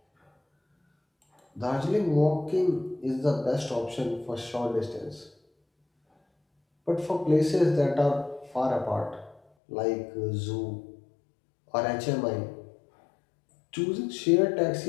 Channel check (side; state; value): right; drops out; at 9.4 s